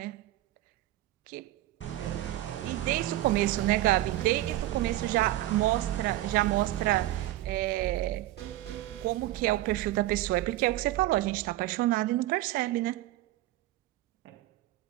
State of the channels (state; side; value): quieter; left; 15.7 dB